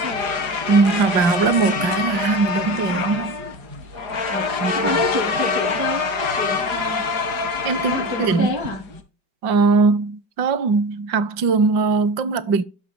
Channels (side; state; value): left; late; 4.9 ms